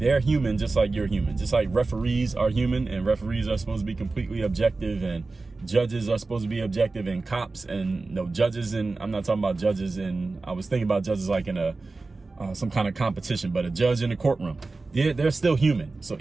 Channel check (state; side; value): quieter; left; 3.6 dB